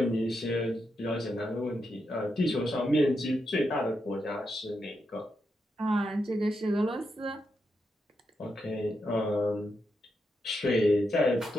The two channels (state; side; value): normal; both; correlation 0.84